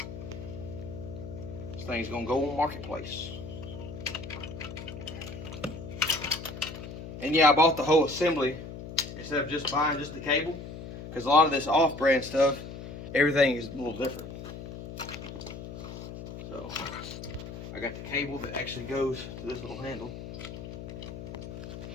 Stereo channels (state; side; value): noise; left; hum, 10 dB below the sound